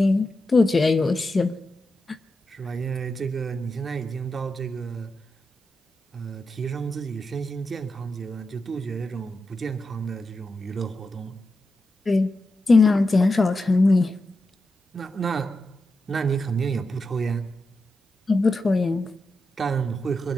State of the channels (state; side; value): normal; both; correlation 0.88